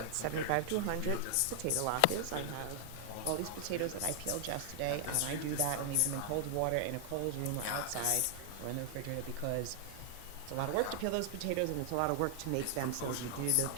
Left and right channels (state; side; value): different; both; correlation 0.00